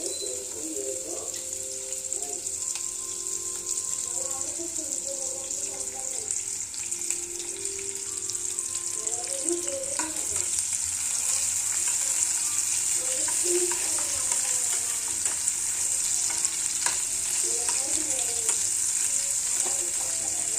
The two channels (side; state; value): both; identical; correlation 1.00